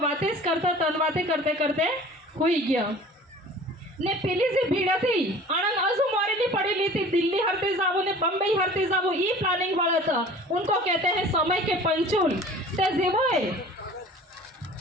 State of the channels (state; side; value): normal; both; correlation 0.45